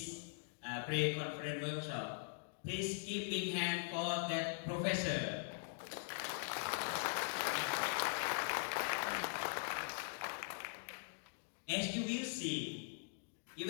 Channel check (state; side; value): silent; right; digital silence